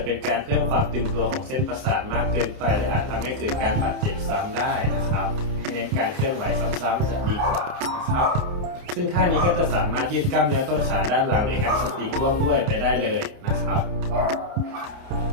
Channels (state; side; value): late; left; 29 ms